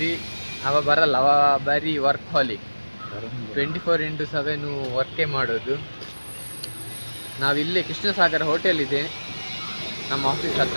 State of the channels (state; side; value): inverted; both; correlation -1.00